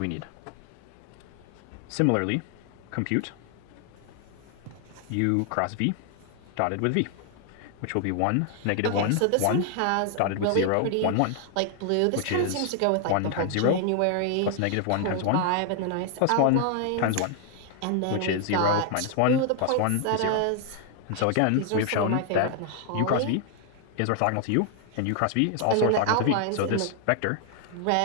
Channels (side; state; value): both; different; correlation 0.00